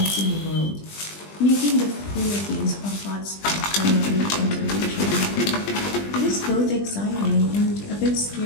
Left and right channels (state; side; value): late; right; 20 ms